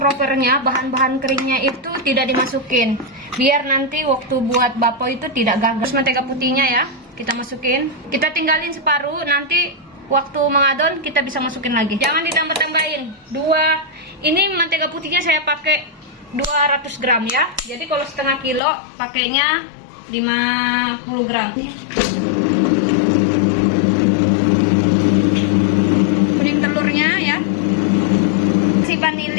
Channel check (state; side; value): drops out; right; at 18.6 s